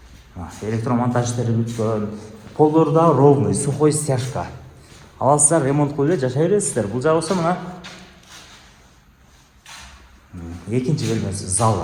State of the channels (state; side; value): identical; both; correlation 1.00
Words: Электромонтаж иштери бүткөн, полдору да ровный, сухой стяжка. Аласыздар, ремонт кылып эле жашай бересиздер. Бул жагы болсо мына экинчи бөлмөсү,